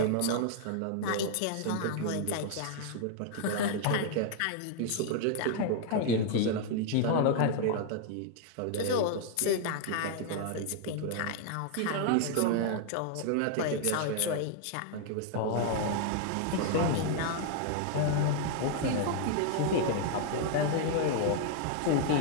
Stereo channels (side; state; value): both; different; correlation 0.00